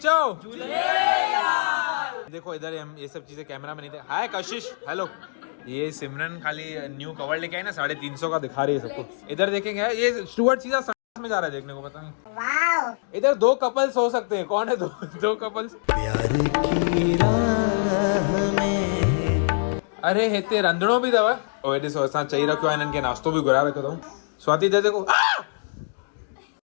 चो देखो इधर हम ये सब चीजें कैमरा में नहीं थे हाय कशिश हेलो ये सिमरन खाली न्यू कवर लेके आई ना 350 का दिखा रही है सबको इधर देखेंगे ये स्टुअर्ट सीधा में जा रहा है देखने को पता नहीं इधर 2 कपल्स हो सकते हैं कौन है दो कपल्स प्यार की राह में अरे हिते रंधणो बि अथव ओए ॾिसो असां चई रखियो आहे हिननि खे नाश्तो बि घुराए रखियो अथऊं स्वाति दे देखो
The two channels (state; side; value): silent; right; digital silence